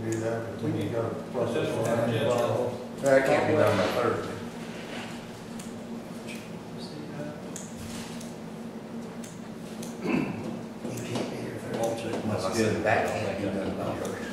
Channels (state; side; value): identical; both; correlation 1.00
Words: do that, but we need to process Yeah. one. That can't be done by Thursday. You can't be here for I'll check my schedule. that. Can't be done by